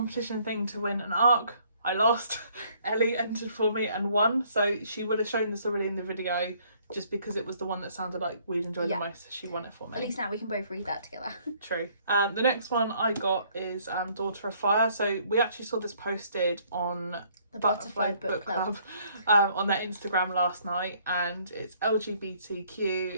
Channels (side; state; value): both; inverted; correlation -0.63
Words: thing to win an ARC. I lost. Ellie entered for me and won, so she would have shown this already in the video just because it was the one that sounded like we'd enjoy the most. She won it for me. At least now we can both read that together. True. The next one I got is Daughter of Fire. So we actually saw this posted on the Butterfly Book Club on their Instagram last night, and it's LGBTQ,